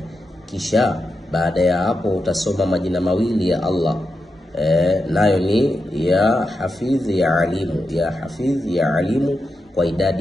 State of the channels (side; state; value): both; normal; correlation 0.88